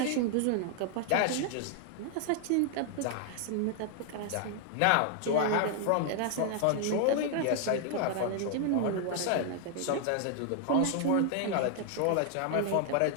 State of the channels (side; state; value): both; different; correlation 0.00